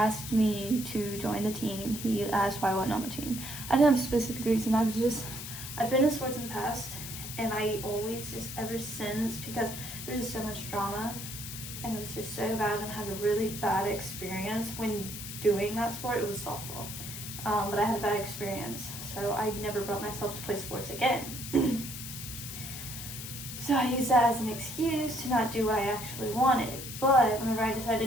me to join the team. He asked why I wasn't on the team. I didn't have a specific reason. I've been in sports in the past, And I always just ever since, because there was just so much drama and it was just so bad, and I had a really bad experience when doing that sport. It was softball, but I had a bad experience, so I never brought myself to play sports again. So I used that as an excuse to not do what I actually wanted. But whenever I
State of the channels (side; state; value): left; noise; hiss, 9 dB below the sound